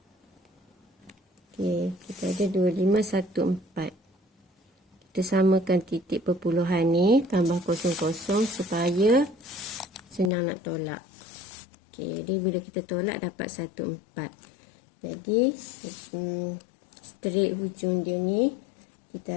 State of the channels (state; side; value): drops out; right; at 10.3 s